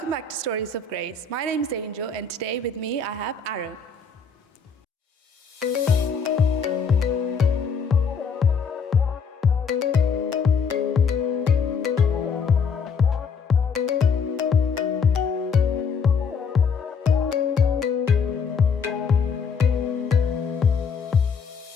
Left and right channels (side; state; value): right; quieter; 5.6 dB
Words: back to Stories of Grace. My name is Angel, and today with me I have Aaron.